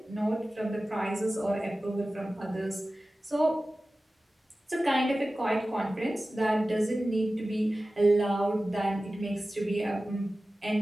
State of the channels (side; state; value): both; normal; correlation 0.96